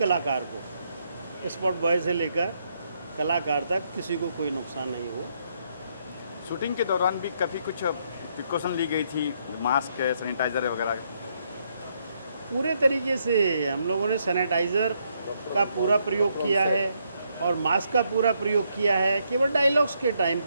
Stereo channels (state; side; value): inverted; both; correlation -0.75